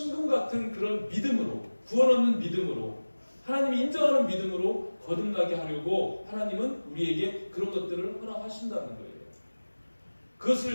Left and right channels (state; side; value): inverted; both; correlation -1.00